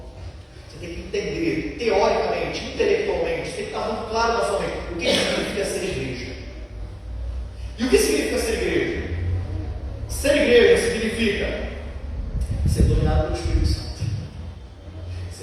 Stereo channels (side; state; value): both; identical; correlation 1.00